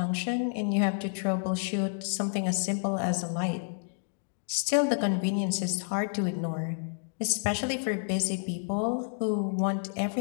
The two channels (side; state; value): right; silent; digital silence